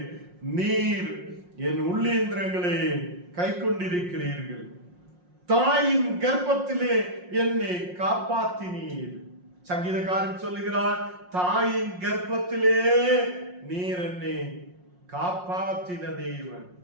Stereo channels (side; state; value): left; late; 5.6 ms